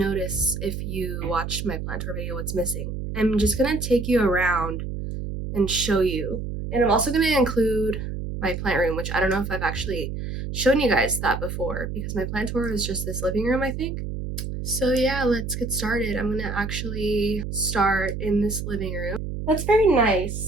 if you watched my plant tour video, what's missing. I'm just going to take you around and show you. And I'm also going to include my plant room, which I don't know if I've actually shown you guys that before because my plant tour is just this living room, I think. So yeah, let's get started. I'm going to actually start in this living room. That's very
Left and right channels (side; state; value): right; noise; hum, 5 dB below the sound